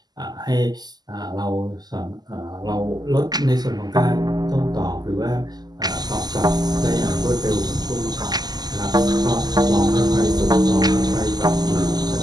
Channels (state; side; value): late; left; 0.20 ms